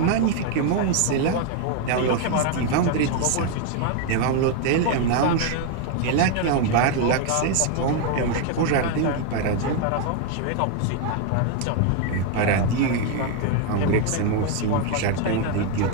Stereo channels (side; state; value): both; different; correlation 0.01